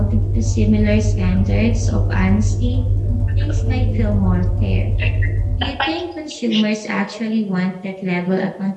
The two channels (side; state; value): both; identical; correlation 1.00